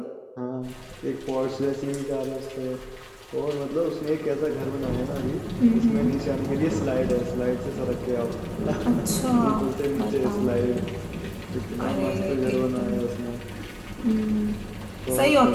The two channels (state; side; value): identical; both; correlation 1.00